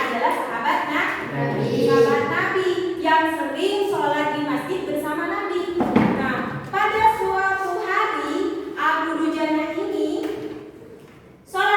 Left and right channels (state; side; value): identical; both; correlation 1.00